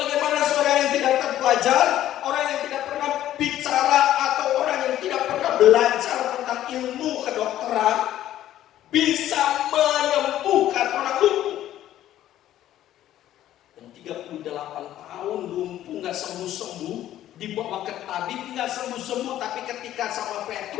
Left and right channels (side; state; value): right; quieter; 12.7 dB